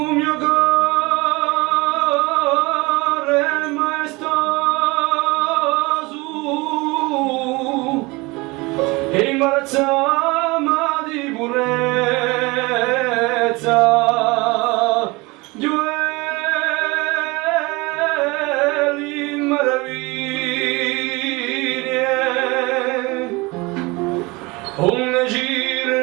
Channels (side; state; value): left; quieter; 24.2 dB